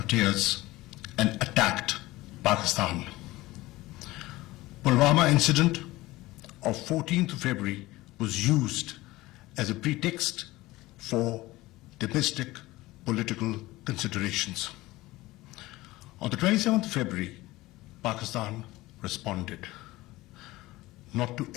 and attacked Pakistan. Pulwama incident of 14th of February was used as a pretext for domestic political considerations. On the 27th of February, Pakistan responded, not to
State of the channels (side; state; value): right; quieter; 18.9 dB